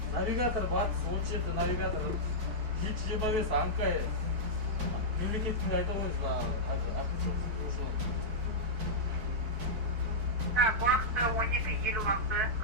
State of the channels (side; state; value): left; late; 4.5 ms